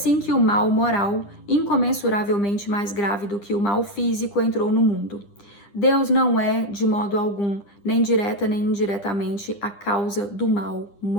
que o mal moral, incomensuravelmente mais grave do que o mal físico, entrou no mundo. Deus não é, de modo algum, nem direta nem indiretamente, a causa do mal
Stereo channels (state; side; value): late; right; 9.9 ms